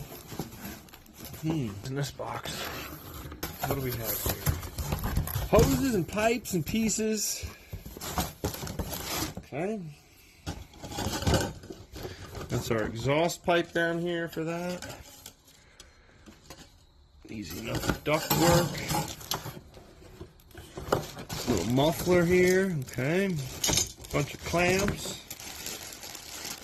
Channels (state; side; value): identical; both; correlation 1.00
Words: In this box, what do we have here? Hoses and pipes and pieces. Okay. That's our exhaust pipe down here for that. Easy enough duct work. Little muffler here, okay. Bunch of clamps.